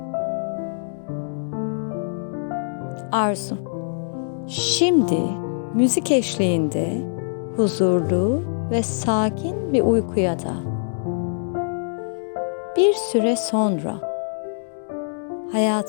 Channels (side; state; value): right; silent; digital silence